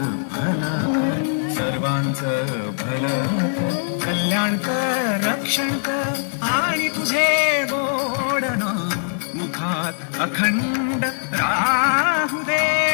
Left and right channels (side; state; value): right; silent; digital silence